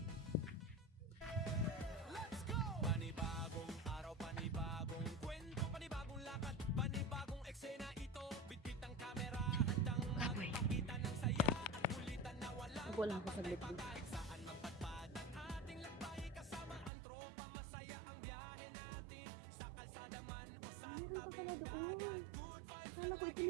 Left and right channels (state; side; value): drops out; left; at 16.9 s